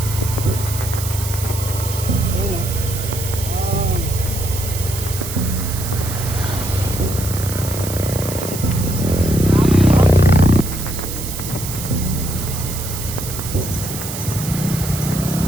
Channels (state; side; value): noise; right; hiss, 8 dB below the sound